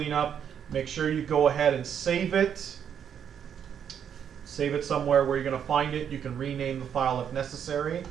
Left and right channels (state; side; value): quieter; left; 8.4 dB